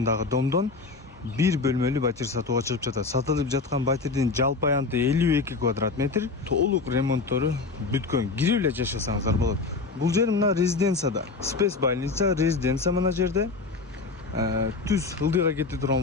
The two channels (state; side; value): quieter; right; 4.2 dB